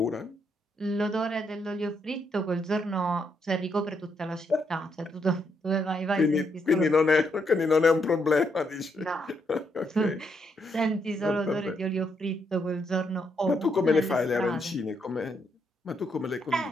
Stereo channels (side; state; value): both; normal; correlation 0.77